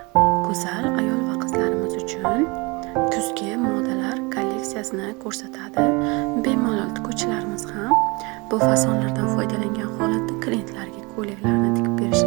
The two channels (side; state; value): left; quieter; 26.9 dB